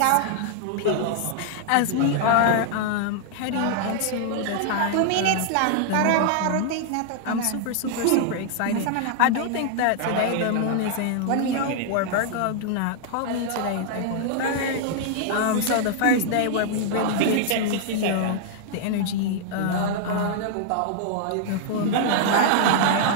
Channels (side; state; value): both; different; correlation -0.01